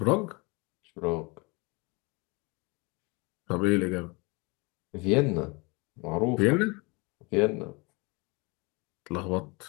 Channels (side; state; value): right; quieter; 28.0 dB